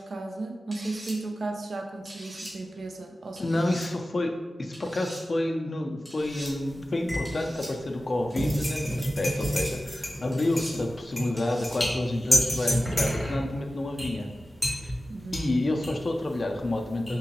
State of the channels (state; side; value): normal; both; correlation 0.95